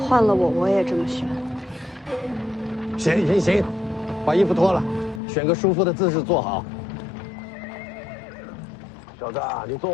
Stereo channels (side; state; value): right; drops out; at 5.2 s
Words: 换了我也这么选。行，把衣服脱了，选个舒服的姿势坐好。小子，你坐